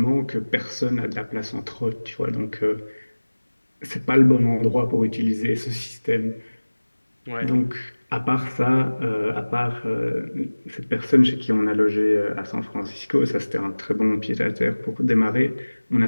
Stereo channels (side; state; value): both; inverted; correlation -1.00